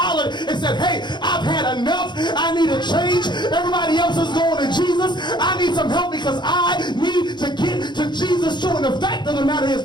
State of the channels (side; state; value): right; late; 0.22 ms